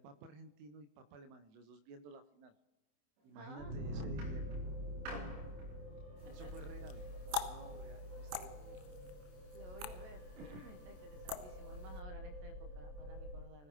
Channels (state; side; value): late; left; 27 ms